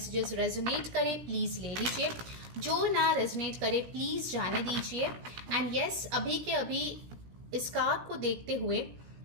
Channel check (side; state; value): left; late; 17 ms